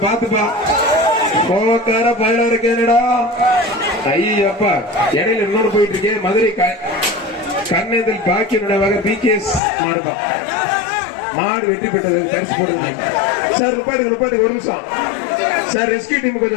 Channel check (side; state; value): right; drops out; at 9.6 s